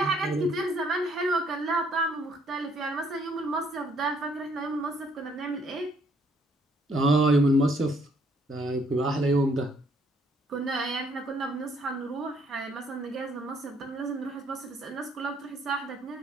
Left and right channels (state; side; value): normal; both; correlation 0.67